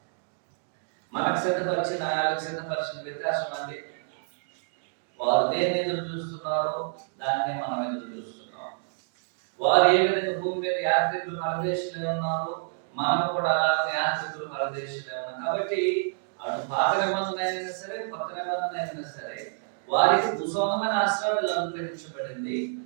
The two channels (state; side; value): silent; left; digital silence